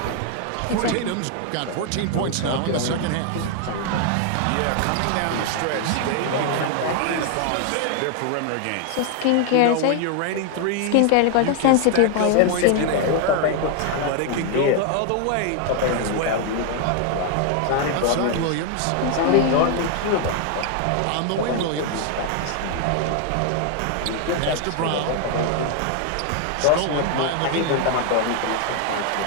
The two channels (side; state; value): both; different; correlation 0.00